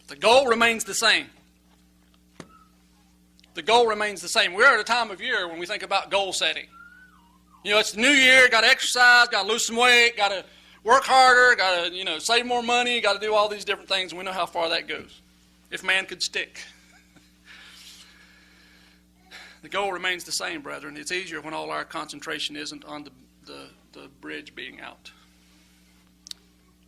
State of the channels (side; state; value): both; identical; correlation 1.00